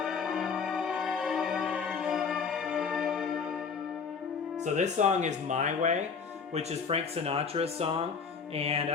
So this song is My Way, which is Frank Sinatra's song. And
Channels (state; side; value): quieter; right; 5.7 dB